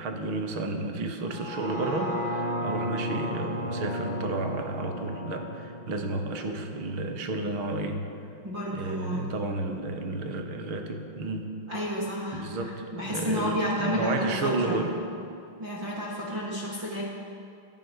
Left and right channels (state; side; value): late; left; 5.7 ms